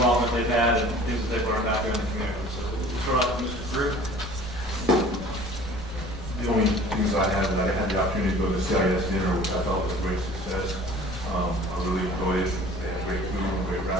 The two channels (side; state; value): both; normal; correlation 0.47